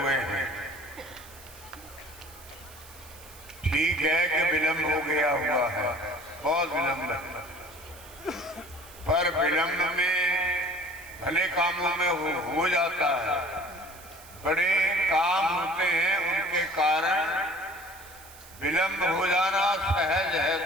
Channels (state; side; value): noise; right; hiss, 20 dB below the sound